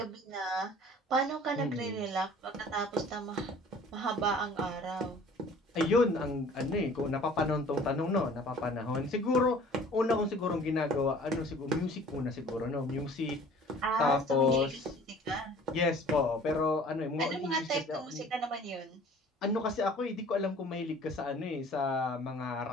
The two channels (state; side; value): normal; both; correlation 0.49